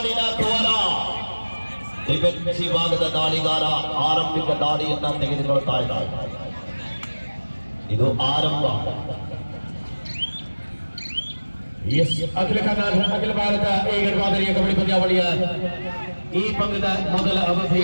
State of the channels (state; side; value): inverted; both; correlation -1.00